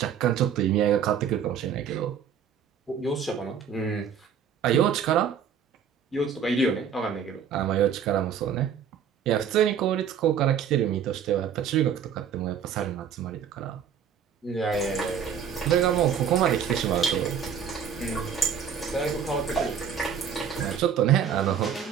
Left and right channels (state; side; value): quieter; left; 7.7 dB